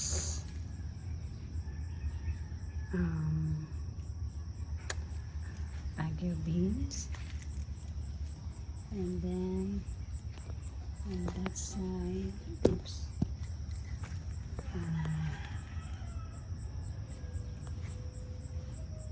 Baguio beans, and then on that side, oops,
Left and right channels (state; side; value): identical; both; correlation 1.00